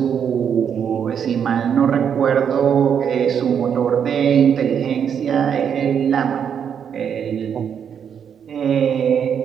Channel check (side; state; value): left; quieter; 7.9 dB